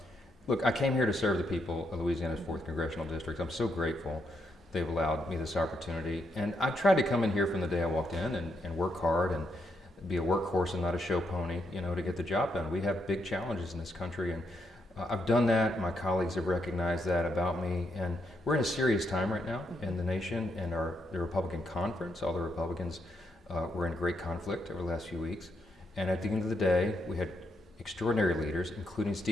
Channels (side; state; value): both; normal; correlation 0.79